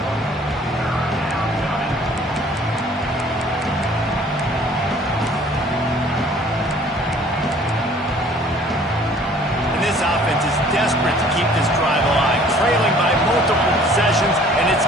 And this offense is desperate to keep this drive alive, trailing by multiple possessions, and it's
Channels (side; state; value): both; normal; correlation 0.54